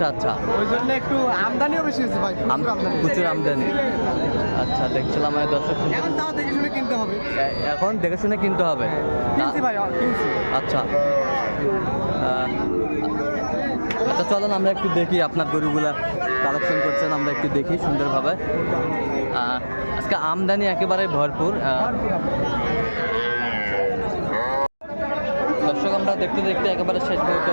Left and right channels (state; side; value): inverted; both; correlation -1.00